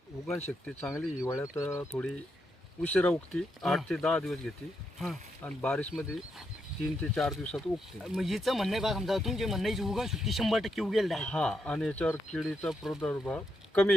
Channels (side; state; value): both; normal; correlation 0.82